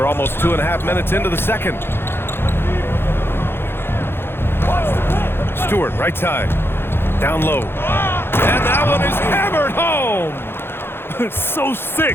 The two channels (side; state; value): right; late; 0.11 ms